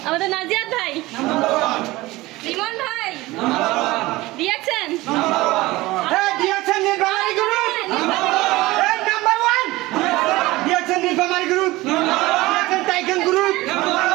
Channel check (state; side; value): quieter; left; 19.6 dB